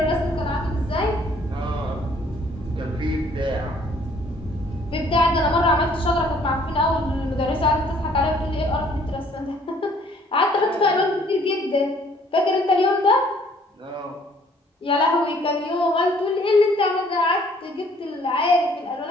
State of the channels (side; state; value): both; normal; correlation 0.60